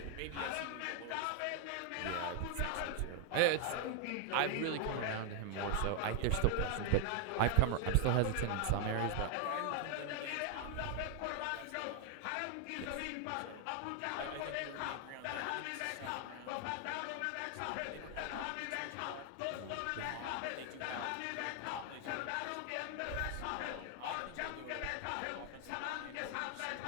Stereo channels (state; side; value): different; both; correlation 0.00